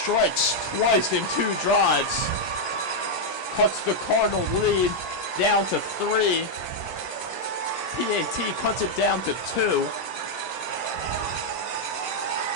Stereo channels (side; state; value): right; late; 17 ms